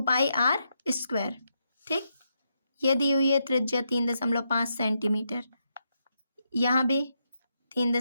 पाई r स्क्वायर। ठीक, ये दी हुई है त्रिज्या 3.5 सेंटीमीटर, यहाँ भी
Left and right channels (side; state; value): both; inverted; correlation -0.82